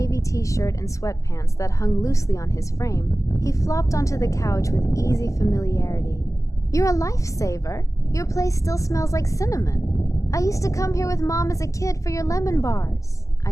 t-shirt and sweatpants that hung loosely on his frame, he flopped onto the couch with easy familiarity. "You're a lifesaver. Your place still smells like cinnamon. I used to come here with Mom as a kid for your lemon bars." I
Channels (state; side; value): late; right; 0.16 ms